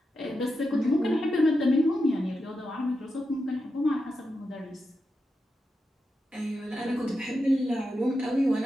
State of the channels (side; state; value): both; normal; correlation 0.88